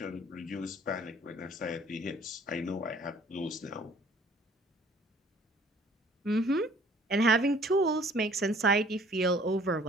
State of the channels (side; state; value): both; normal; correlation 0.55